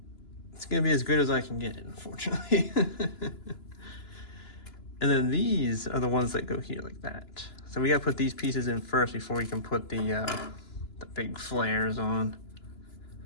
it's gonna be as good as I can get it, unfortunately. And then these are the ones that go here like that. So we gotta put these pieces in first before we can put the big flares on.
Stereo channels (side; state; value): right; late; 2.9 ms